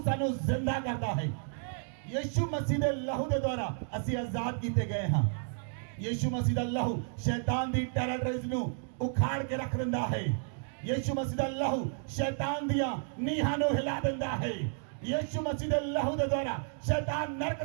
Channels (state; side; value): silent; left; 56 dB below the other